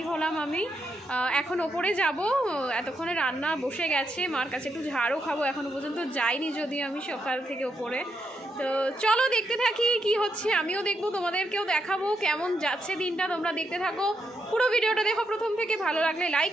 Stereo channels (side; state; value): both; normal; correlation 0.81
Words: হলাম। আমি এখন ওপরে যাব, এতক্ষণে রান্না বসে গেছে, মার কাছে একটু ঝাড়ও খাবো। এখনও পর্যন্ত যাইনি যদি আমি সকাল থেকে ওপরে। তো চলো দেখতে থাকি কি হচ্ছে, আমিও দেখবো, তোমাদেরকেও দেখাবো কেমন যাচ্ছে দিনটা। তোমরা দেখতে থাকো, পুরো ভিডিওটা দেখো প্রথম থেকে। ভালো লাগলে লাইক